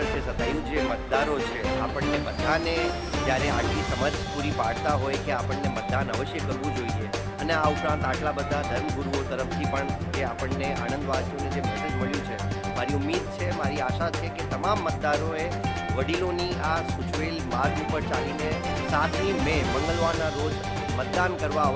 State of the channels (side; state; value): both; identical; correlation 1.00